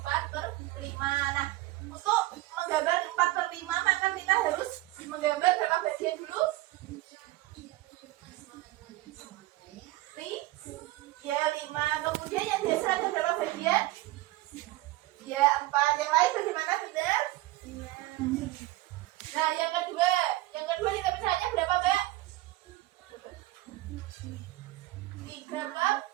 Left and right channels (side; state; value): left; quieter; 18.2 dB